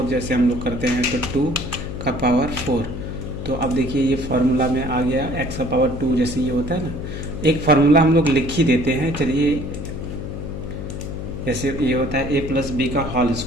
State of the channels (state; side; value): noise; left; hum, 7 dB below the sound